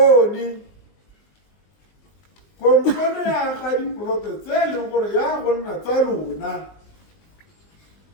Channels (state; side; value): late; right; 20 ms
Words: ya ga diploto tse le ngore ya gonna tsa rona